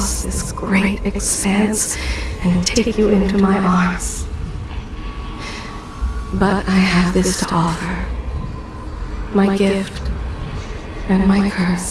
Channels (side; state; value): both; identical; correlation 1.00